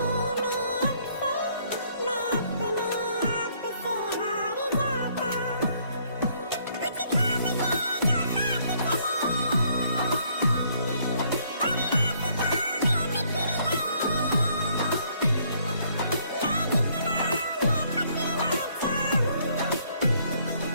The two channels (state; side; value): inverted; both; correlation -0.66